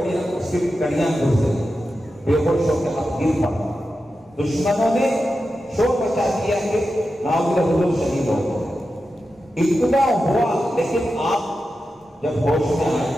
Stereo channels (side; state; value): both; normal; correlation 0.91